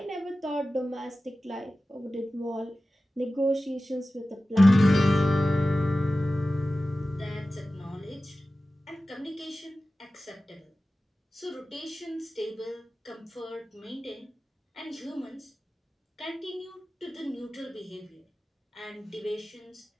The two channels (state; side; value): normal; both; correlation 0.95